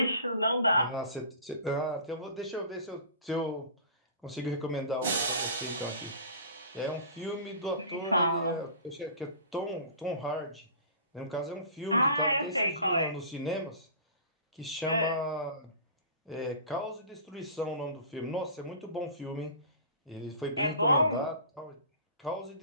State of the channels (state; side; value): inverted; both; correlation -0.39